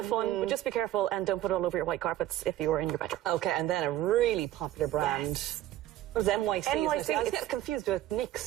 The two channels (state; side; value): quieter; left; 13.9 dB